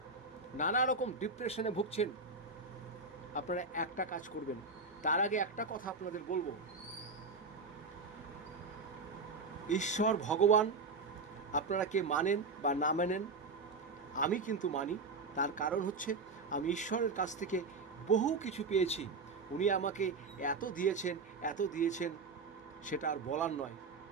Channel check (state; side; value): quieter; left; 4.0 dB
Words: নানা রকম ডিপ্রেশনে ভুগছেন, আপনারা একটা কাজ করবেন। তার আগে একটা কথা আপনাদের বলবো, ঈশ্বর ভগবান আপনারা কে মানেন বা না মানেন, আমি কিন্তু মানি। তার কারণ হচ্ছে আমি ঈশ্বরের কাছ থেকে বহু কিছু পেয়েছি। উনি আমাকে এত দিয়েছেন, এত দিয়েছেন, সেটা আর বলার নয়।